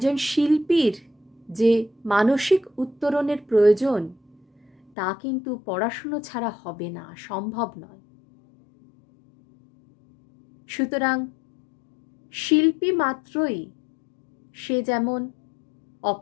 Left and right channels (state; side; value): drops out; right; at 4.9 s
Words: শিল্পীর যে মানসিক উত্তরণের প্রয়োজন তা কিন্তু পড়াশুনো ছাড়া হবে না, সম্ভব নয়। সুতরাং শিল্পী মাত্রই সে যেমন